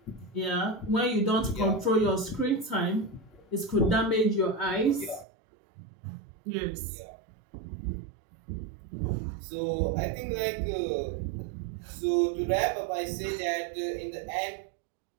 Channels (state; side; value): drops out; left; at 5.2 s